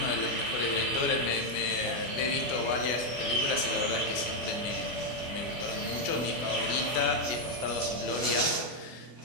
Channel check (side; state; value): right; late; 24 ms